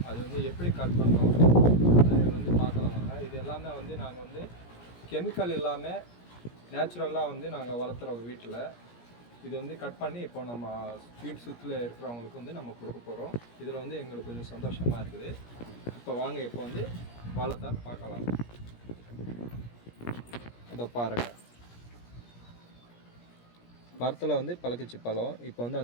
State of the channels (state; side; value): late; right; 17 ms